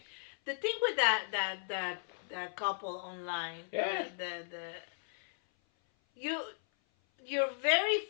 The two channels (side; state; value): right; silent; 54 dB below the other